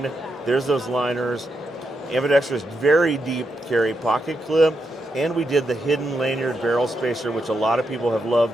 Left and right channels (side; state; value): both; normal; correlation 0.83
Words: There's those liners. Ambidextrous, very deep carry pocket clip. And we did the hidden lanyard barrel spacer, which a lot of people have